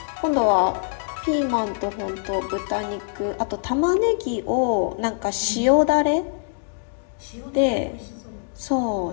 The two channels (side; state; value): right; silent; digital silence